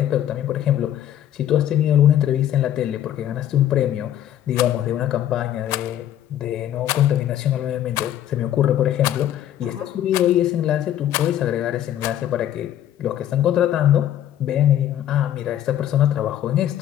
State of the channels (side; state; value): right; quieter; 11.5 dB